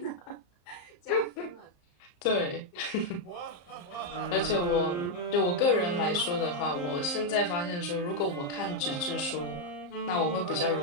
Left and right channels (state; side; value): late; right; 34 ms